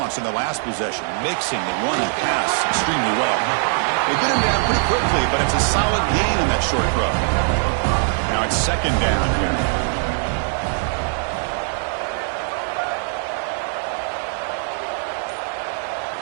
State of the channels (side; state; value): left; silent; 58 dB below the other